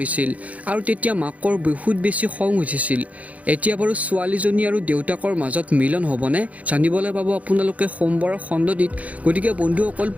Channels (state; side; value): late; left; 0.069 ms